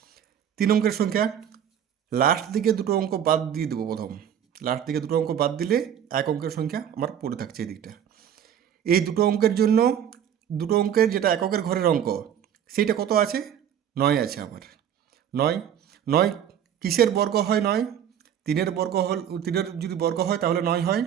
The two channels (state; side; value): quieter; left; 9.4 dB